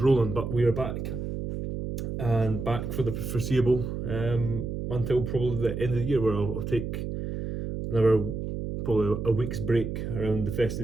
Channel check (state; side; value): noise; right; hum, 5 dB below the sound